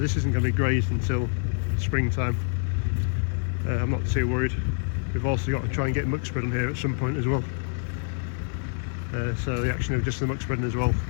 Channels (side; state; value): right; silent; 61 dB below the other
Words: isn't going to be grazed until springtime. I'm not too worried. We've also got to try and get muck spread on here at some point as well. So the action of just the muck spreading as well,